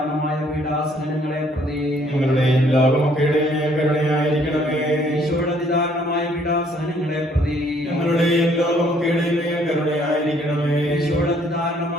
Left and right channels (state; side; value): normal; both; correlation 0.64